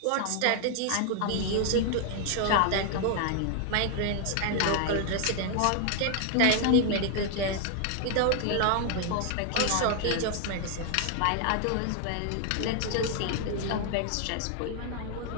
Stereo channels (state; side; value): different; both; correlation 0.00